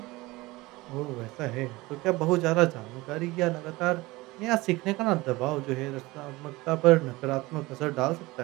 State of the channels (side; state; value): left; quieter; 21.0 dB